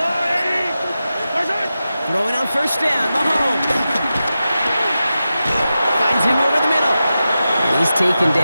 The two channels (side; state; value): both; inverted; correlation -0.92